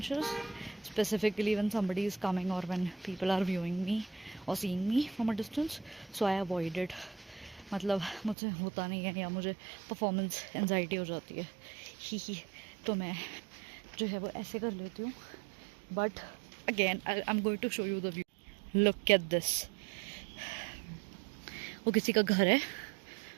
specifically when somebody is coming or when people are viewing me or seeing me from a distance. So I avoid it. मतलब मुझसे होता नहीं है या मुझे performance anxiety हो जाती है ही, तो मैं जो है वो ऐसे कर लेती हूँ. But again I am going to show you the view. Look at this. वो किसी का घर है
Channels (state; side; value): drops out; left; at 8.3 s